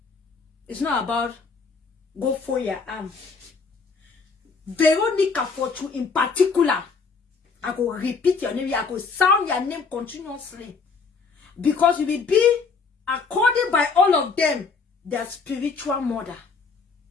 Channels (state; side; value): quieter; right; 4.9 dB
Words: It's not about go for your arm. Veronica Fortune in particular. I go repeat your name. I go sound your name continuously. Because you will be, according by all of them, their spiritual mother.